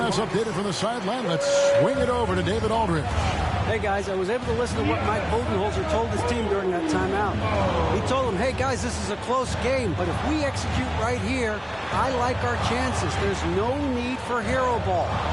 updated from the sideline, let's swing it over to David Aldridge. Hey, guys, I was able to listen to what Mike Budenholzer told his team during that timeout. He told them, hey, guys, this is a close game, but if we execute right here, I like our chances. There's no need for hero ball.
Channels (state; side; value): noise; right; hum, 28 dB below the sound